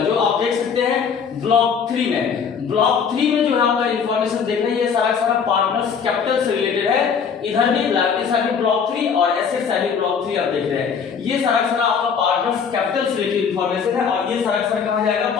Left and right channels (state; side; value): quieter; right; 6.5 dB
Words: आप देख सकते हैं ब्लॉक 3 में, ब्लॉक 3 में जो है आपका इंफॉर्मेशन देख रहे हैं, ये सारा पार्टनर्स कैपिटल से रिलेटेड है। इधर भी लायबिलिटी साइड में ब्लॉक 3 और एसेट साइड में ब्लॉक 3 आप देख रहे हैं, ये सारा आपका पार्टनर्स कैपिटल से रिलेटेड इंफॉर्मेशन है, और ये सारा कहां जाएगा,